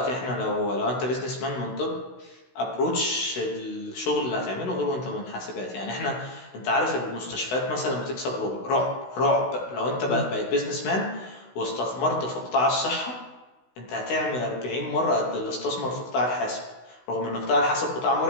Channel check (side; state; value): right; late; 16 ms